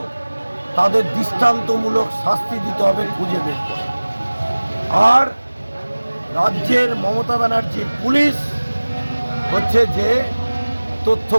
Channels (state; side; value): inverted; both; correlation -1.00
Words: তাদের দৃষ্টান্তমূলক শাস্তি দিতে হবে, খুঁজে বের করে। আর রাজ্যের মমতা ব্যানার্জির পুলিশ হচ্ছে যে তথ্য